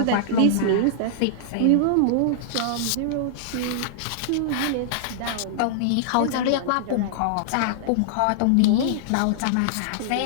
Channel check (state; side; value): different; both; correlation -0.01